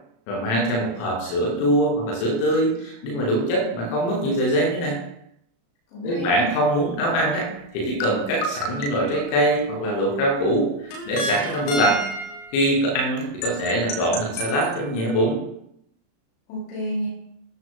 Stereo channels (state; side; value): late; right; 35 ms